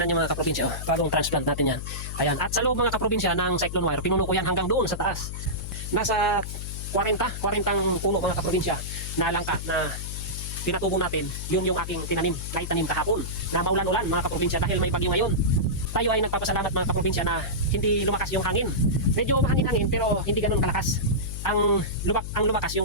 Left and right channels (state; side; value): noise; left; hum, 7 dB below the sound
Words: nyo mga kaprobinsya, oh, bagong transplant natin yan. Ayan, at sa loob mga kaprobinsya ng cyclone wire, pinuno ko yan hanggang doon sa taas. Nasa 40 puno mga kaprobinsya na langka na pinatubo natin, yun yung aking tinanim na itanim kahapon na maulan-ulan mga kaprobinsya dahil may bagyo ngayon. Tayo ay nagpapasalamat mga kaprobinsya na hindi lumakas yung hangin. Medyo mahangin-hangin pero hindi ganun kalakas. Ang lumakas